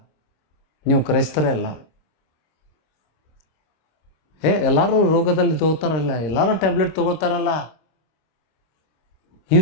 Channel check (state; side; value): late; right; 26 ms